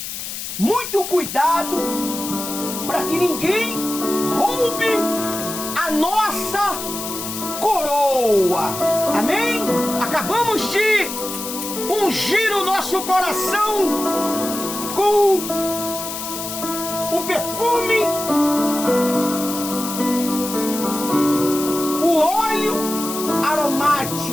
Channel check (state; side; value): noise; left; hiss, 7 dB below the sound